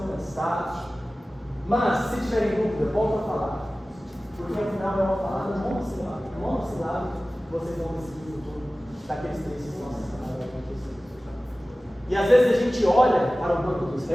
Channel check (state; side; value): normal; both; correlation 0.97